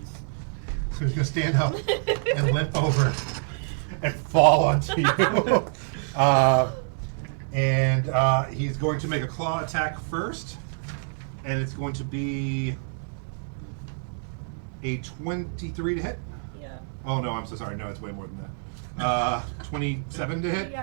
So he's going to stand up and limp over and fall onto you. And he's going to make a claw attack first. And it's going to be a 23 to hit. Yeah. Oh, no, I'm so sorry. No, it's way more than that. 27 to hit.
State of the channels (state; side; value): silent; left; 60 dB below the other